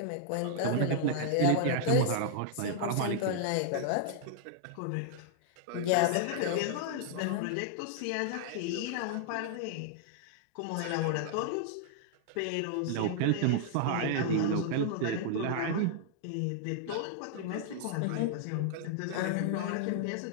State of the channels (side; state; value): both; different; correlation -0.01